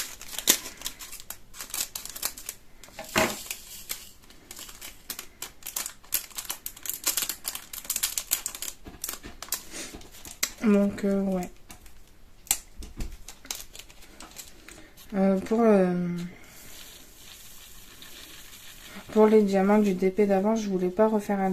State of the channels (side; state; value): both; identical; correlation 1.00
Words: Donc ouais. Pour les diamants du DP d'avant, je voulais pas refaire un